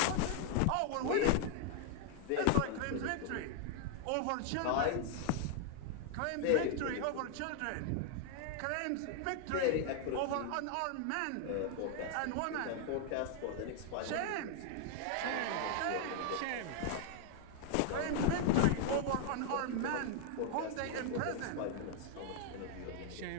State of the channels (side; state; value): both; different; correlation 0.00